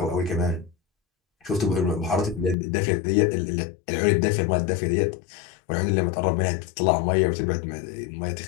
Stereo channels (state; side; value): drops out; right; at 2.6 s